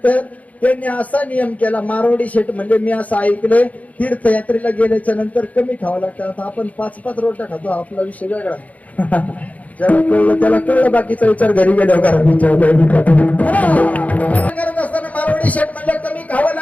त्यांनी असा नियम केला. मारवाडी शेठ म्हणजे मी असं ऐकलंय तीर्थयात्रेला गेल्याच्या नंतर कमी खावं लागतं. आता आपण 5-5 रोट्या खातो, आपला विषय वेगळा. ज्याला कळलं त्याला कळलं, बाकीचा विचार घरी गेल्यावर करत असताना मारवाडी शेठ म्हणलं कमी खावं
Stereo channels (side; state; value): right; late; 0.072 ms